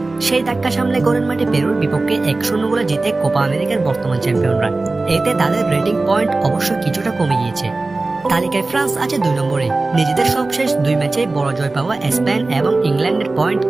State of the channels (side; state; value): left; quieter; 3.3 dB